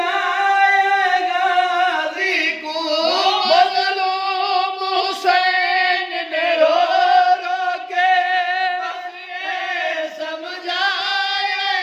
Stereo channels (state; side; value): identical; both; correlation 1.00